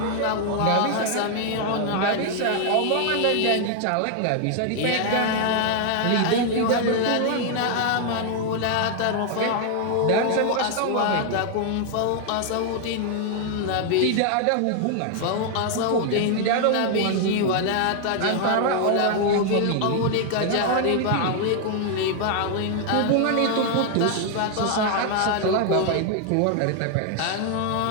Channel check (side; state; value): both; different; correlation 0.00